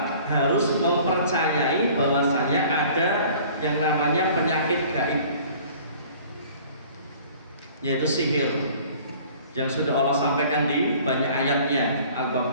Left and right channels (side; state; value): both; inverted; correlation -0.50